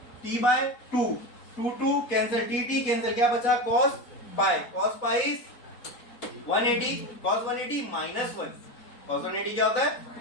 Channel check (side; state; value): right; late; 4.2 ms